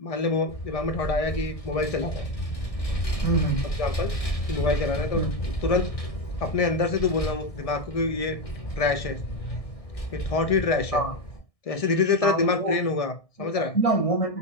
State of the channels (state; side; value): late; right; 1.6 ms